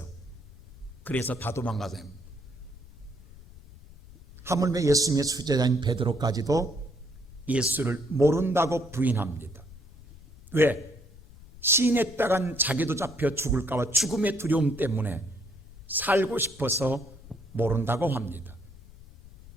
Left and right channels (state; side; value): noise; left; rumble, 20 dB below the sound